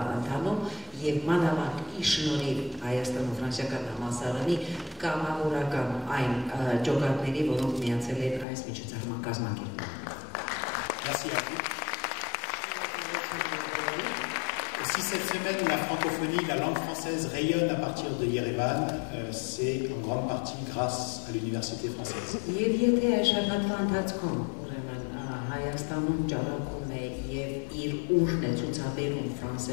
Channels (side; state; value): right; drops out; at 8.5 s